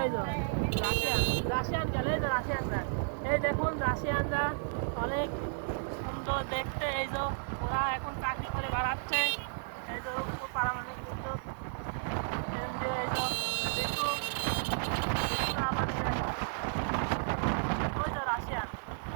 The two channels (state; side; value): silent; left; digital silence